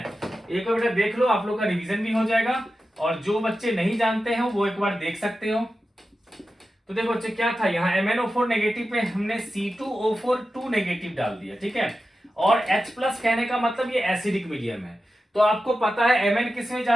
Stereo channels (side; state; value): both; normal; correlation 0.92